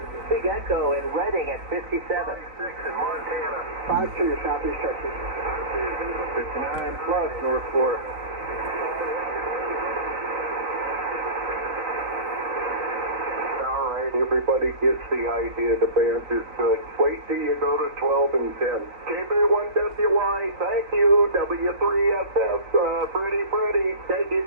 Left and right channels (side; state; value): left; late; 3.9 ms